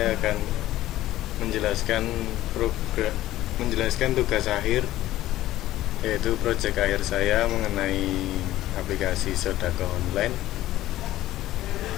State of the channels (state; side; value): quieter; right; 15.0 dB